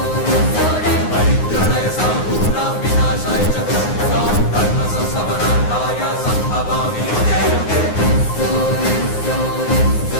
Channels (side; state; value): right; late; 9.6 ms